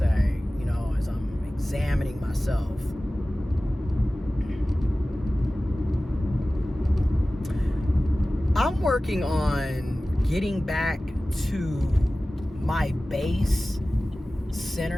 as I'm examining myself. I'm working on getting back to my base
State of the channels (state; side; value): normal; both; correlation 0.97